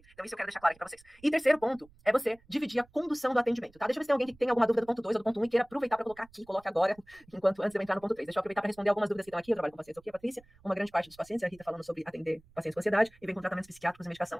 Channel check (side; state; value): right; noise; rumble, 28 dB below the sound